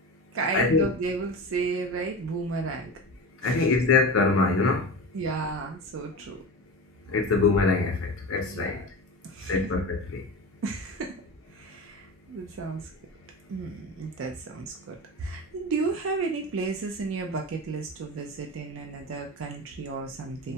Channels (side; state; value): both; normal; correlation 0.28